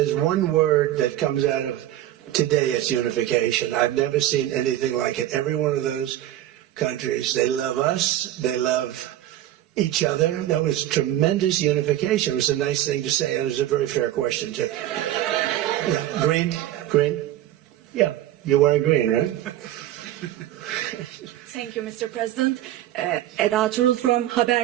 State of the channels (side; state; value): left; quieter; 13.4 dB